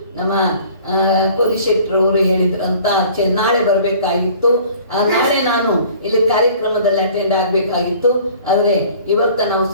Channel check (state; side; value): inverted; both; correlation -0.50